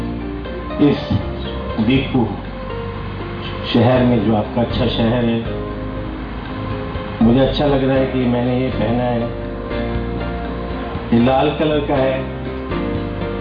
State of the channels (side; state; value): both; identical; correlation 1.00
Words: इस दीपू शहर में, जो आपका अच्छा शहर है, मुझे अच्छा लग रहा है कि मैंने ये पहना है, ये लाल कलर का है।